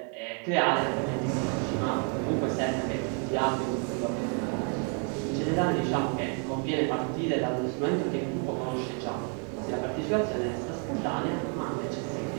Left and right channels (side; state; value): left; quieter; 39.9 dB